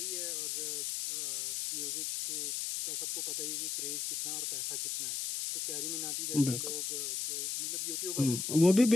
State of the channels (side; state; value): left; noise; hiss, 1 dB below the sound